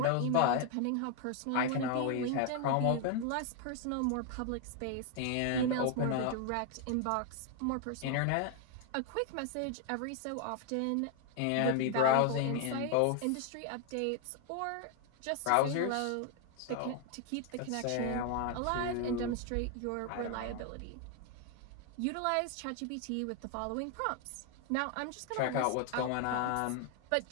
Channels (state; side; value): different; both; correlation 0.00